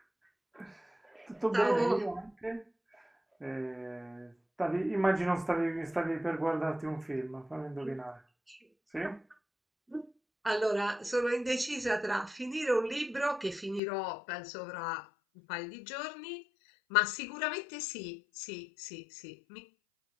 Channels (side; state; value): right; drops out; at 13.8 s